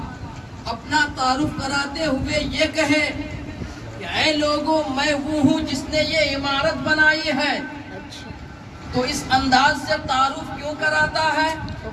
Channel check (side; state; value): both; identical; correlation 1.00